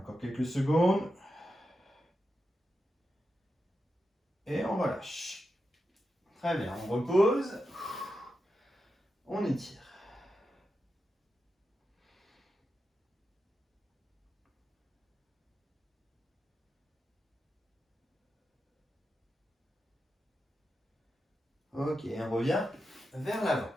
quelques secondes. Et on relâche. Très bien, on repose. On étire. Ok, on revient vers l'avant.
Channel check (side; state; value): both; normal; correlation 0.89